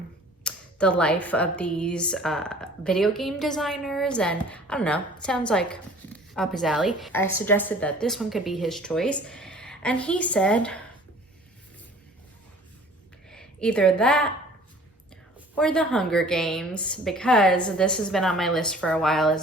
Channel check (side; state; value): both; normal; correlation 0.49